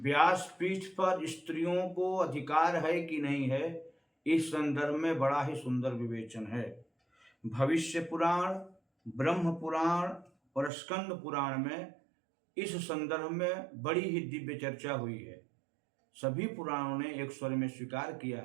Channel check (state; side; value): drops out; left; at 10.7 s